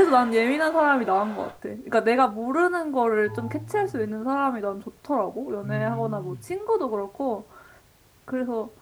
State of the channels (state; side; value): identical; both; correlation 1.00